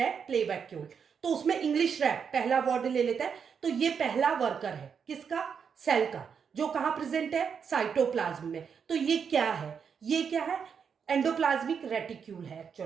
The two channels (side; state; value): left; quieter; 6.7 dB